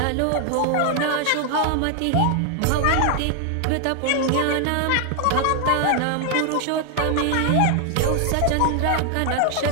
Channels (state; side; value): different; both; correlation 0.00